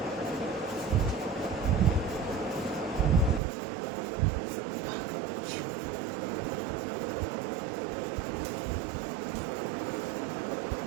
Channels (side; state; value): left; drops out; at 3.4 s